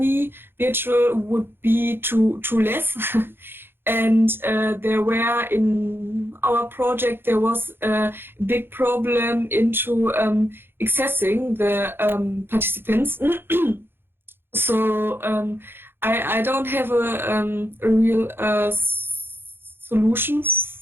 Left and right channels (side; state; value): left; late; 0.10 ms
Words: virtual would be too less. And there were, in our project, there was a big problem into accessing the participants. So I don't have a real solution